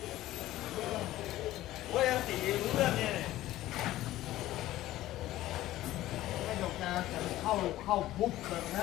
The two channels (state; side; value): quieter; right; 15.2 dB